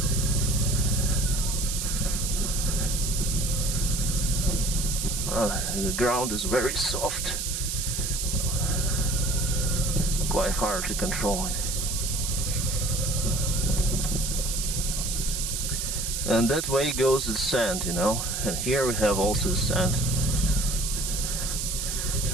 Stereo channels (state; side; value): noise; right; hiss, 2 dB below the sound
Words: The ground is very soft, quite hard to control it. And that way goes the sand, you know, and here we have also sand.